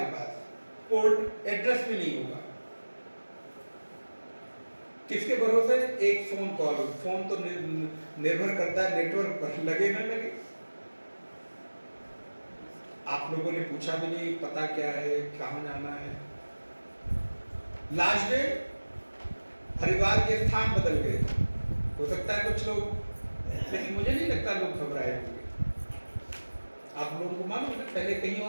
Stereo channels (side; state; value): both; inverted; correlation -1.00